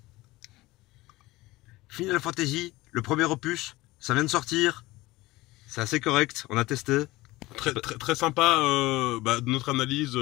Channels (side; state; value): right; quieter; 19.5 dB